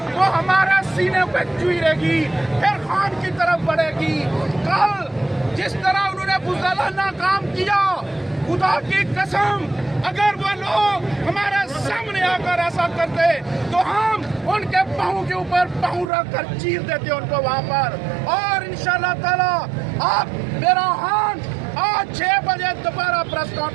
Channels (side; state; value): left; drops out; at 16.1 s